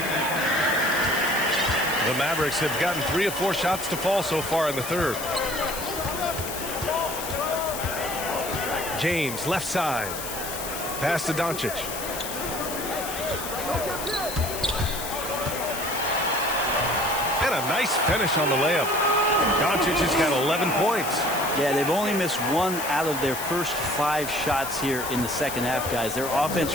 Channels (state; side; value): noise; left; hiss, 7 dB below the sound